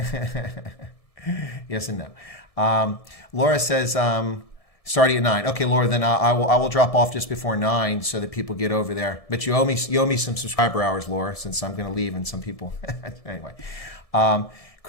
Yes and no. Laura says, starting at 9. Okay, Laura, then I will drop off just before 9 so that people get over there. But you owe me some subscriber hours, Laura, since I'm going to leave and some people. Anyway.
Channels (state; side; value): late; right; 1.7 ms